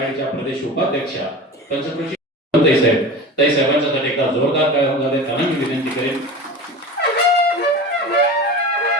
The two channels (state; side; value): normal; both; correlation 0.32